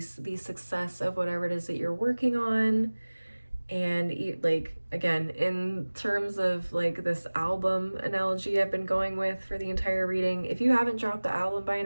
the success of whatever it is that you're working on. And like, again, in terms of like this album analogy I've been going with for the entire reading, if you haven't dropped the album by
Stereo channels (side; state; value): both; inverted; correlation -1.00